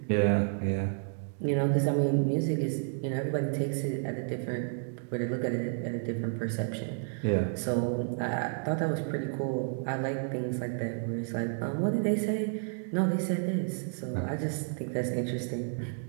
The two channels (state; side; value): silent; left; 57 dB below the other